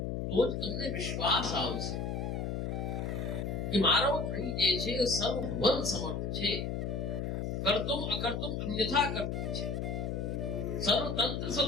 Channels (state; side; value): noise; left; hum, 2 dB below the sound